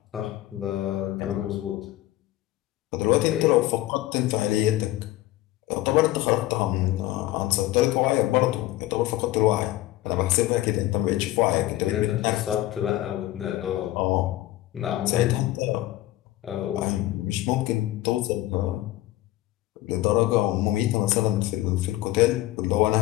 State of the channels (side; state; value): right; quieter; 16.0 dB